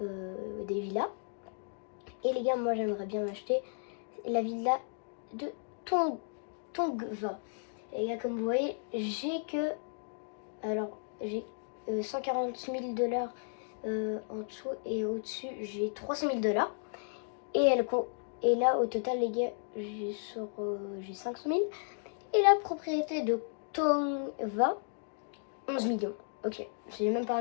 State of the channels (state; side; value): silent; right; digital silence